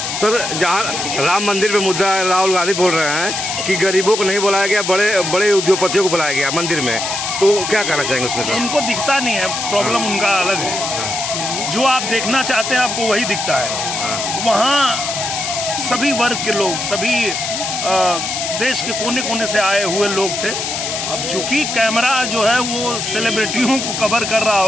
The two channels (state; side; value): noise; left; hiss, 3 dB below the sound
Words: सर, जहाँ राम मंदिर पे मुद्दा है, राहुल गांधी बोल रहे हैं कि गरीबों को नहीं बुलाया गया, बड़े बड़े उद्योगपतियों को बुलाया गया मंदिर में, तो क्या कहना चाहेंगे उसमें सर? उनको दिखता नहीं है, प्रॉब्लम उनका अलग है। जो आप देखना चाहते हैं आपको वही दिखता है। वहाँ सभी वर्ग के लोग, सभी देश के कोने कोने से आए हुए लोग थे। अब चूंकि कैमरा जो है वो सेलिब्रिटियों को कवर कर रहा